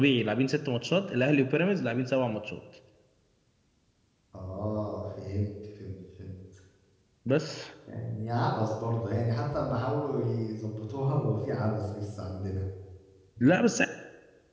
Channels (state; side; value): identical; both; correlation 1.00